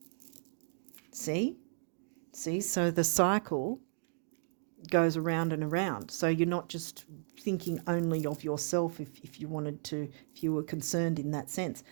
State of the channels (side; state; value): left; silent; digital silence